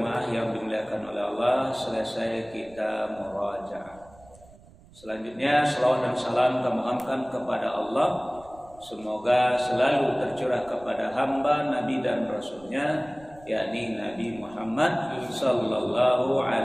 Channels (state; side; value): noise; right; rumble, 24 dB below the sound